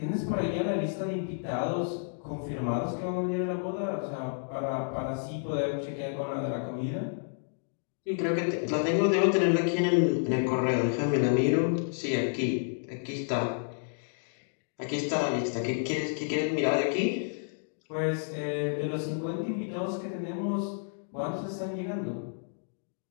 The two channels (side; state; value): right; silent; digital silence